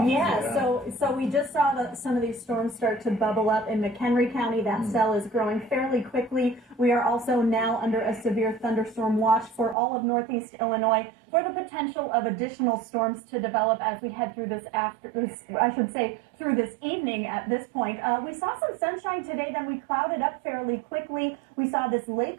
Yeah, so we just saw some of these storms start to bubble up in McHenry County. That cell is growing fairly quickly. We are also now under a severe thunderstorm watch for all of northeast Illinois for the potential of additional storms to develop as we head through through this evening at this point. We saw some sunshine today, then we clouded up fairly quickly. We saw this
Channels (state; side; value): drops out; left; at 9.8 s